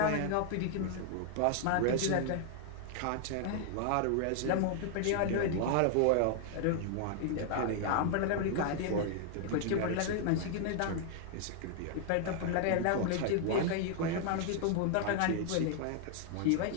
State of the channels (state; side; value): different; both; correlation 0.00